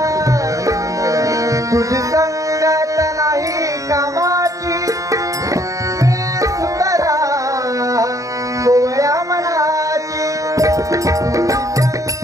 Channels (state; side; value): late; left; 0.16 ms